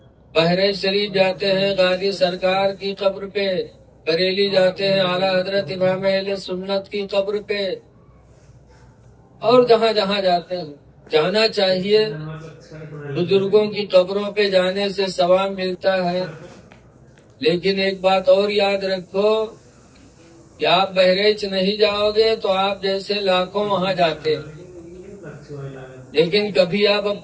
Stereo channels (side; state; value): both; identical; correlation 1.00